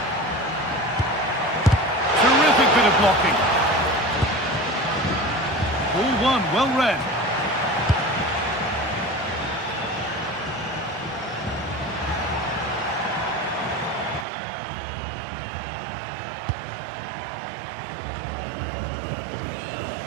Terrific bit of blocking. Ball one, well read.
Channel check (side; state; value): left; drops out; at 14.2 s